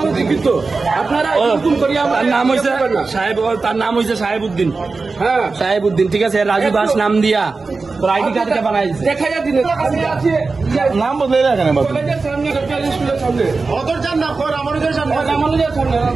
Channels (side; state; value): left; quieter; 4.0 dB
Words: তার নাম হয়েছে সাহেবউদ্দিন। হ্যাঁ, সাহেবউদ্দিন, ঠিক আছে। রাজু দাস নাম দিয়া তোর আইডি কার্ড কে বানাই দেখা যায় দিন, নাম বদলে রাখেন